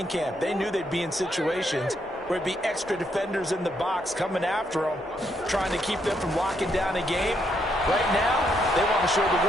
camp. They knew they'd be in situations where it'd be extra defenders in the box coming after them, trying to keep them from locking down a game. Right now, they want to show the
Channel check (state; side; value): normal; both; correlation 0.76